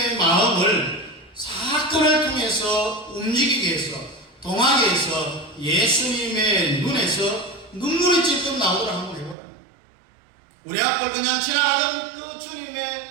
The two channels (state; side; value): drops out; left; at 9.3 s